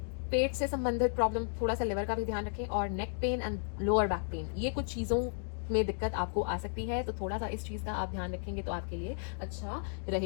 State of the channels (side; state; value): right; silent; 55 dB below the other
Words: पेट से संबंधित प्रॉब्लम, थोड़ा सा लिवर का भी ध्यान रखें, और neck pain and lower back pain, ये कुछ चीज़ों में दिक्कत आपको आ सकती है। तो थोड़ा सा इस चीज़ का आप ध्यान रखेंगे तो आपके लिए अच्छा